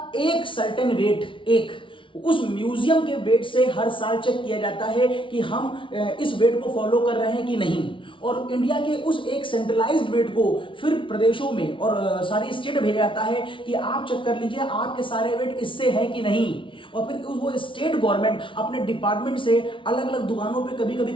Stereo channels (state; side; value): late; right; 0.25 ms